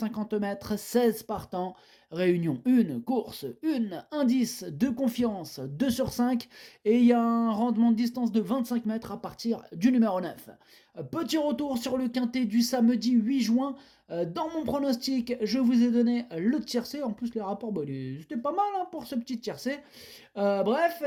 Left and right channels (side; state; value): both; identical; correlation 1.00